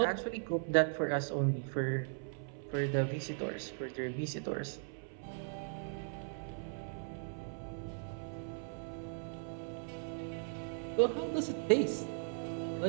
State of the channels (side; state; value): left; silent; 52 dB below the other